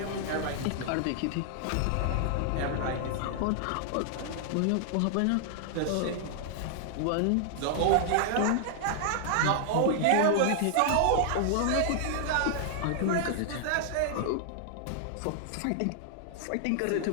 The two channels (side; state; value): both; different; correlation -0.01